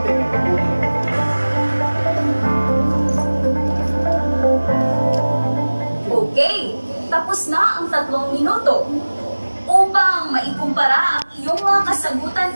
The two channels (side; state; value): both; inverted; correlation -1.00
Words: Okay, tapos na ang 3 minuto. Upang maikumpara ang iyong mga kasagutan